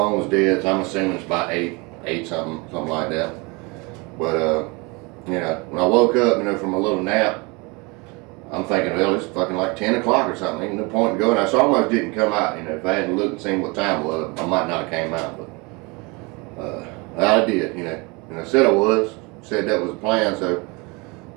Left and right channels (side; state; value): left; quieter; 27.7 dB